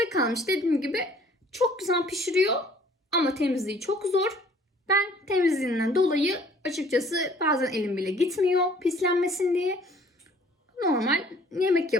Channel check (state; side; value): normal; both; correlation 0.56